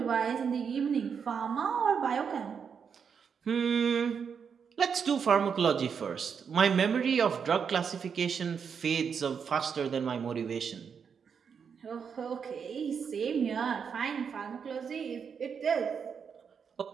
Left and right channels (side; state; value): left; quieter; 6.6 dB